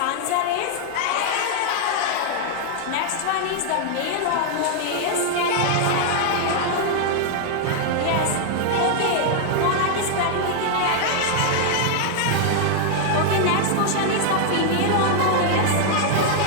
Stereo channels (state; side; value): different; both; correlation 0.00